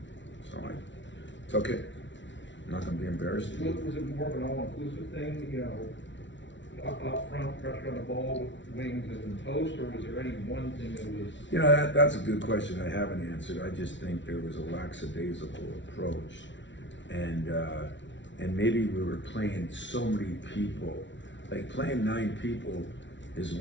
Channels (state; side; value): late; right; 0.54 ms